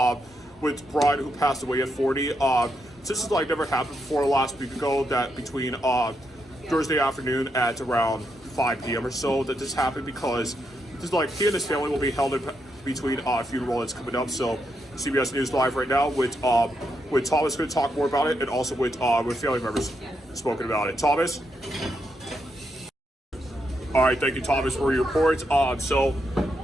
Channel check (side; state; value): both; normal; correlation 0.81